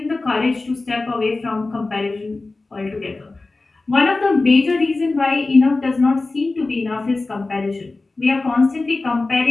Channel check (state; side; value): quieter; right; 3.4 dB